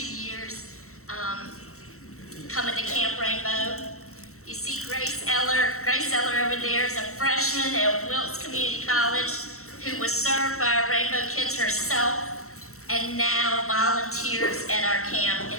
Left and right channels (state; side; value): late; right; 0.63 ms